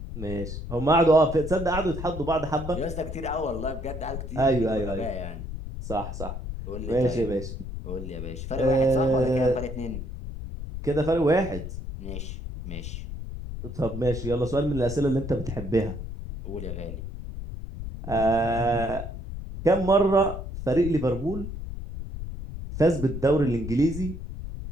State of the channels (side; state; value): left; noise; rumble, 8 dB below the sound